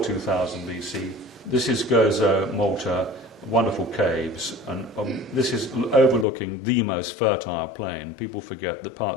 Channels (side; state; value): right; drops out; at 6.2 s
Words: 2000 BC, this is Gozo, Malta, wonderful caves, and this is overlooking the most fertile plain. People forget that